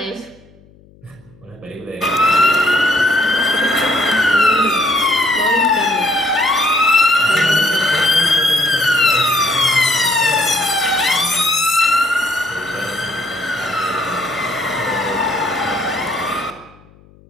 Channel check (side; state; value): left; noise; hum, 28 dB below the sound